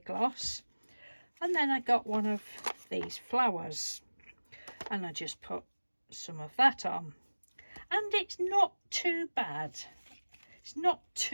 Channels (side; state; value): both; inverted; correlation -1.00